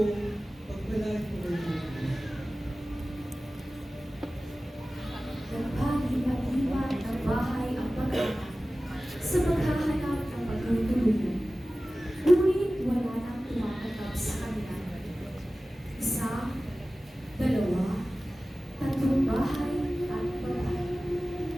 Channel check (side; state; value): both; normal; correlation 0.96